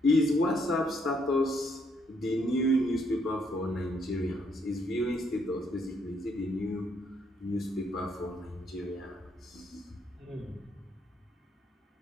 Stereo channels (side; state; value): both; normal; correlation 0.72